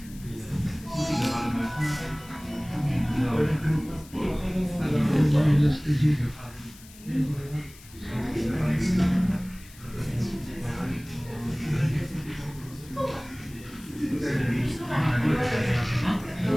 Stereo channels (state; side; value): noise; left; hiss, 21 dB below the sound